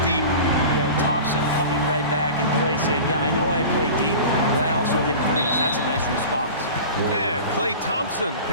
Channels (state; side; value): inverted; both; correlation -0.36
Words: deep. Yeah, Thompson coming right back and Klay saying, yeah, I know I play deep, but I also hit 3s. That's a nice response. And Klay Thompson